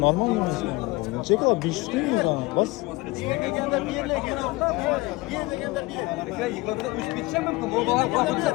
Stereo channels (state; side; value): quieter; right; 22.5 dB